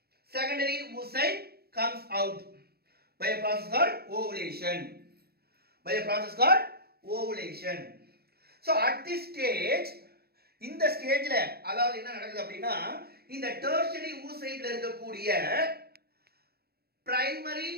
secondary oocyte comes out by a process called ovulation. By a process called ovulation. So at this stage, இந்த ஸ்டேஜ்ல அதாவது என்ன நடக்குது அப்படின்னா, இந்த tertiary oocyteல இருக்கக்கூடிய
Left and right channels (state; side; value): late; left; 0.46 ms